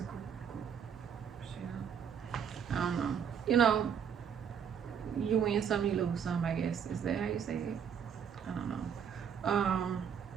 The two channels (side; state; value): left; quieter; 7.7 dB